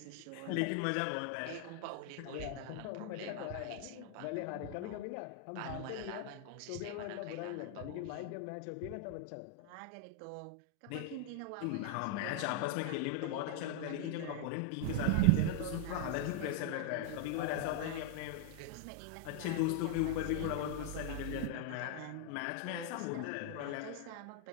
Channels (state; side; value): different; both; correlation 0.00